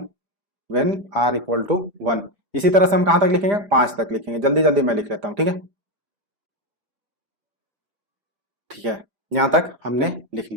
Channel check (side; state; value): left; late; 5.0 ms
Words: व्हेन r इक्वल टू 1। इसी तरह से हम कहां तक लिखेंगे, 5 तक लिखेंगे, जल्दी जल्दी मैं लिख लेता हूं, ठीक है, ठीक है, यहां तक हमने लिख